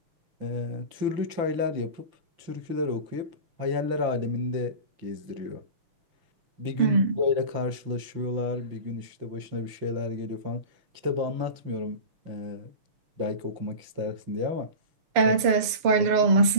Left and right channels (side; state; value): left; late; 6.8 ms